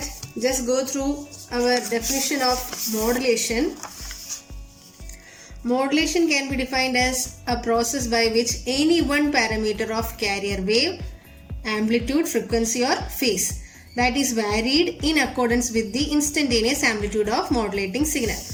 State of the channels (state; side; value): identical; both; correlation 1.00